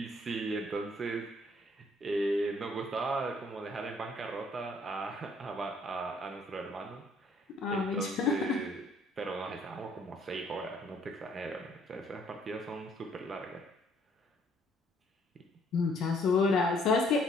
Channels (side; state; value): both; normal; correlation 0.63